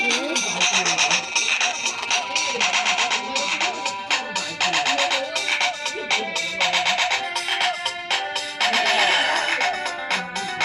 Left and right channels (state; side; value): identical; both; correlation 1.00